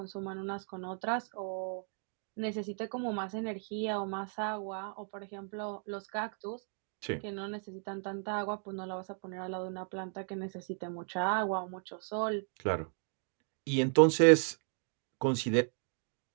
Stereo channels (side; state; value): left; silent; 54 dB below the other